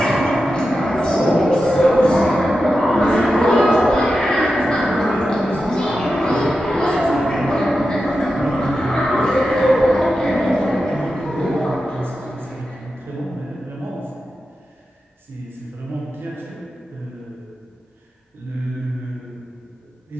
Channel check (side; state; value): both; normal; correlation 0.90